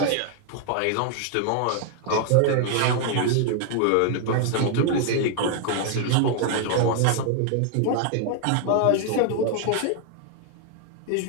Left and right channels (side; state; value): both; different; correlation 0.00